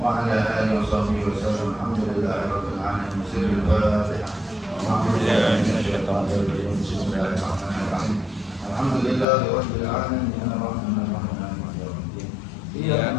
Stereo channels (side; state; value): right; drops out; at 9.2 s